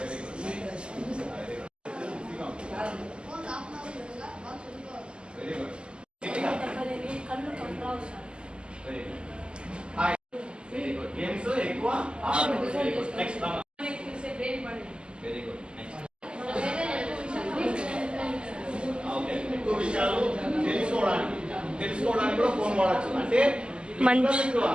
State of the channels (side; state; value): left; late; 0.050 ms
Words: good very good కళ్ళు కంట్రావు sir. Very good very good. Games ఎక్కువ next very good next. Okay, ఎక్కువ విషయాలు తెలుసుకోవడానికి కూడా ఫోన్ వాడచ్చు. అంటే